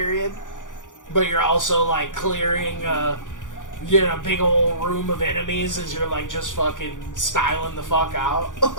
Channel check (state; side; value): late; right; 0.87 ms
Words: But you're also, like, clearing, big old room of enemies as you're, like, just fucking styling the fuck out.